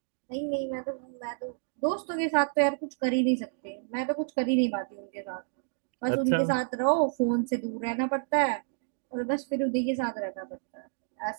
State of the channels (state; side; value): silent; left; digital silence